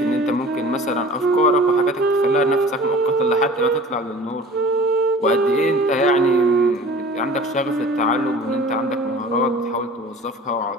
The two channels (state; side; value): normal; both; correlation 0.44